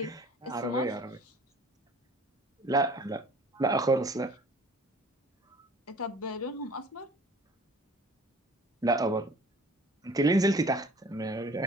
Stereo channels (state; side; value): normal; both; correlation 0.49